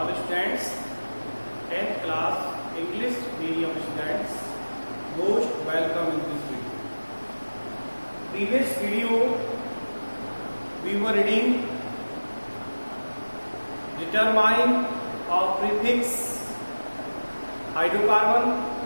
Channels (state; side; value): inverted; both; correlation -1.00